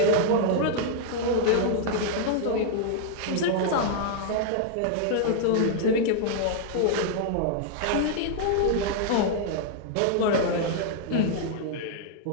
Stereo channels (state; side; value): different; both; correlation -0.01